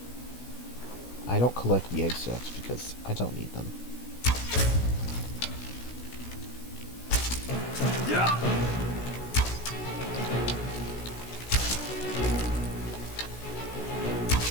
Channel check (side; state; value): right; late; 16 ms